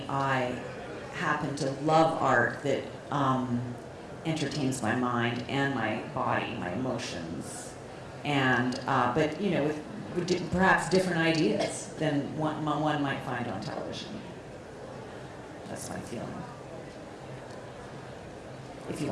I happen to love art that entertains my mind and my body, my emotions, and but you know, with perhaps different ideas than one might find on television. That's my feeling. If you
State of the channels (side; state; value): both; identical; correlation 1.00